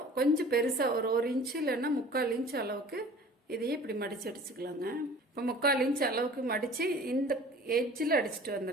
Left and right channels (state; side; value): normal; both; correlation 0.45